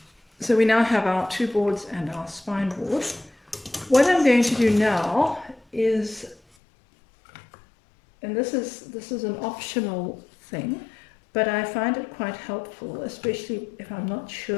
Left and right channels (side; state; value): right; drops out; at 6.4 s